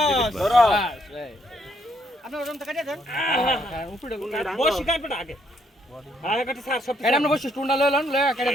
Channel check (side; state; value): both; normal; correlation 0.72